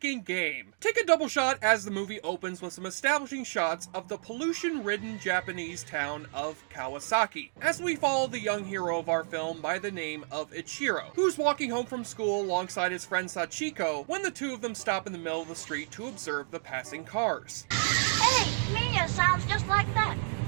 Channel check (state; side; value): silent; left; digital silence